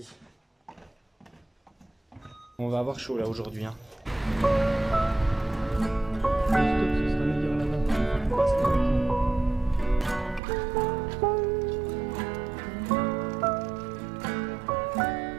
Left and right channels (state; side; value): drops out; left; at 10.4 s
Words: On va avoir chaud là aujourd'hui. Hein. Stop, ce sera meilleur là-bas. On passe le retour.